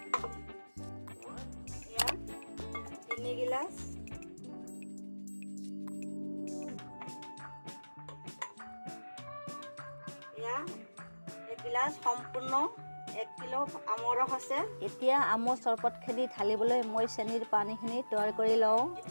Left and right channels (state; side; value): inverted; both; correlation -1.00